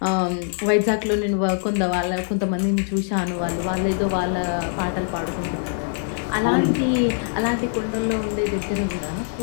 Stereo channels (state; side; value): silent; right; digital silence